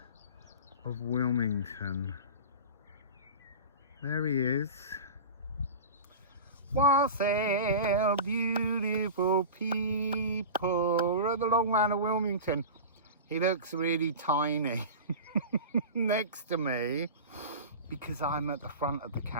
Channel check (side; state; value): both; inverted; correlation -0.31